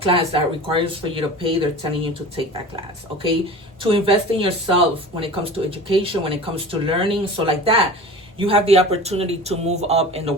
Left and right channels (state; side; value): normal; both; correlation 0.37